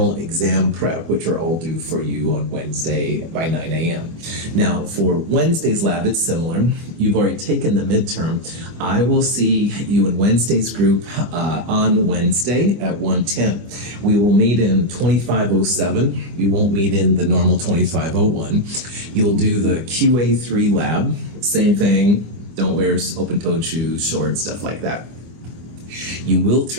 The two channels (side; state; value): left; late; 24 ms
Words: exam prep, which are all due for you on Wednesday by 9 a.m. Now, for Wednesday's lab, it's similar. You've already taken the midterm. I will see you in Wednesday's group on Wednesday at 1:10. We will meet in 2507. We won't meet in the normal 2501. You'll do the QA3 lab. Same thing. Don't wear open-toed shoes, shorts, stuff like that. You will